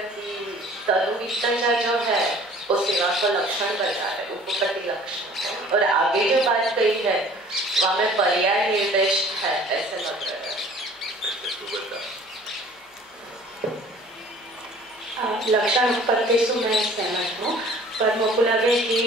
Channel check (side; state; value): both; normal; correlation 0.50